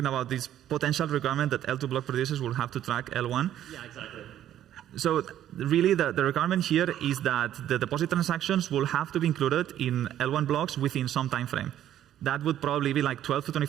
about this potential requirement that L2 block producers will have to track L1. Yeah, exactly. So really the requirement here is that the deposit transactions will have to be included in L1 blocks within some time frame. That would probably be like 12 to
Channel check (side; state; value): left; quieter; 11.5 dB